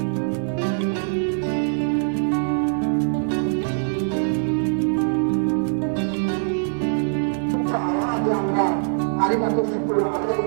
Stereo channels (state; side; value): silent; left; digital silence